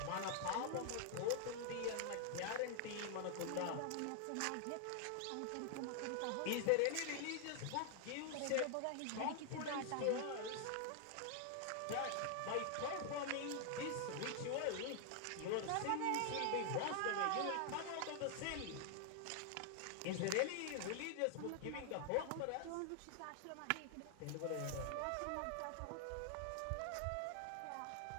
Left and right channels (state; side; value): different; both; correlation 0.00